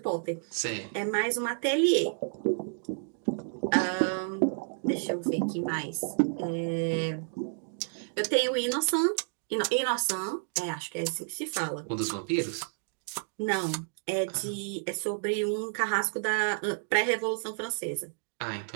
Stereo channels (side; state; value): left; silent; digital silence